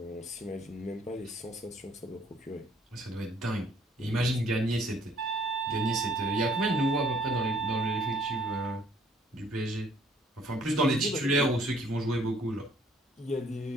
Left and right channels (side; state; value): both; normal; correlation 0.61